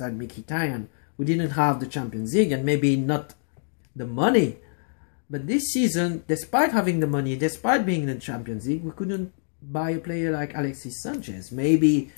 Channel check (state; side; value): silent; right; digital silence